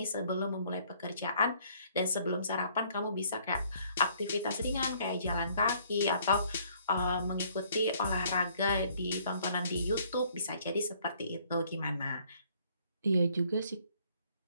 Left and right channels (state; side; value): inverted; both; correlation -0.62